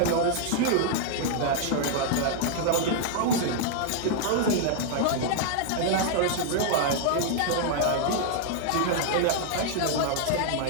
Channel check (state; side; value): different; both; correlation -0.01